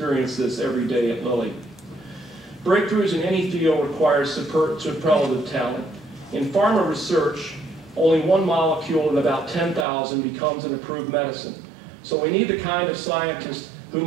this every day at Lilly. Breakthroughs in any field require superlative talent. In pharma research, only one molecule in about 10,000 becomes an approved medicine. So we need the kind of scientists who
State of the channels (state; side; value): drops out; left; at 9.9 s